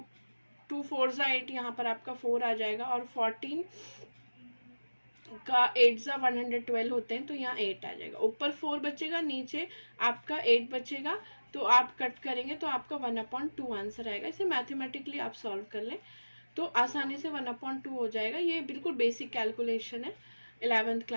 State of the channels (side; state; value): both; inverted; correlation -1.00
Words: 4 8, यहाँ पर आपका 4 आ जाएगा और 14 का 8 112 होते हैं तो यहाँ 8 आ जाएगा. ऊपर 4 बचेगा, नीचे आपका 8 बचेगा, तो आप कट करेंगे तो आपका 1/2 आंसर आएगा. इसे मैथमेटिकली आप सॉल्व कर लें तो आसानी से 1/2 हो जाएगा. ये बिल्कुल बेसिक कैलकुलेशन है 11th